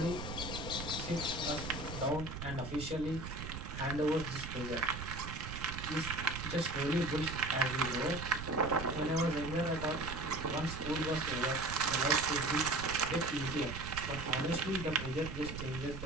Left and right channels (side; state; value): right; noise; rumble, 8 dB below the sound